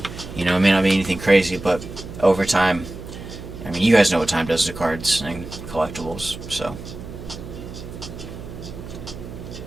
It may not be anything crazy, but over time, I mean, you guys know what time does to cards and collectibles, so.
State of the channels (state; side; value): noise; right; hum, 12 dB below the sound